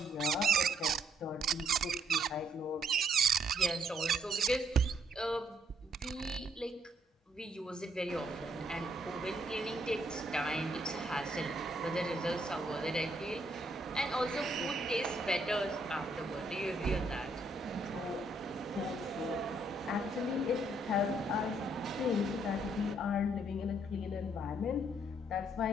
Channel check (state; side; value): normal; both; correlation 0.71